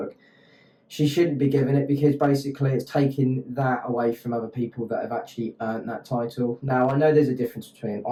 She shouldn't be given it because basically it's taking that away from other people that have actually earned that title. Now, I know there's a difference between an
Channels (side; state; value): both; identical; correlation 1.00